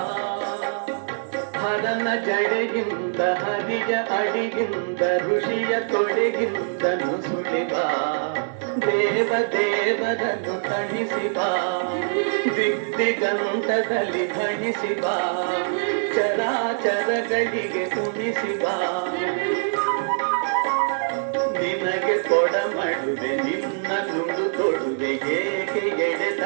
ಹರನ ಜಡೆಗಿಂದ ಹರಿಯ ಅಡಿಗಿಂದ ಋಷಿಯ ತೊಡೆಗಿಂದ ನುಸುಳಿ ಬಾ ದೇವ ದೇವರನ್ನು ತಣಿಸಿ ಬಾ ದಿಗ್ದಿಗಂತದಲ್ಲಿ ಧಣಿಸಿ ಬಾ ಚರಾಚರಗಳಿಗೆ ಉಣಿಸಿ ಬಾ ನಿನಗೆ ಕೊಡಮಡುವೆ ನಿನ್ನ ನುಡು ತೊಡುವೆ ಏಕೆ ಎಡೆ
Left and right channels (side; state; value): left; silent; digital silence